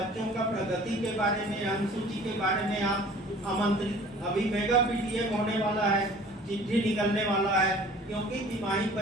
का प्रगति के बारे में, अनुसूची के बारे में आप आमंत्रित। अभी मेगा पीटीएम होने वाला है, चिट्ठी निकलने वाला है, क्योंकि तिमाही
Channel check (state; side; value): normal; both; correlation 0.48